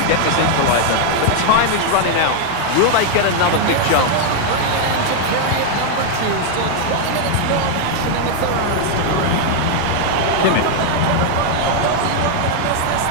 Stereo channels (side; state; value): both; different; correlation 0.00